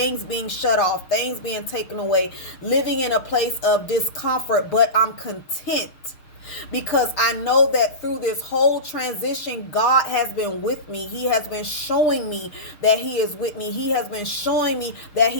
being shut off, things being taken away, living in a place of discomfort, but I'm content because I know that through this whole transition, God has been with me. He has been showing me that he is with me. He has been showing me that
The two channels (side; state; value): right; late; 6.6 ms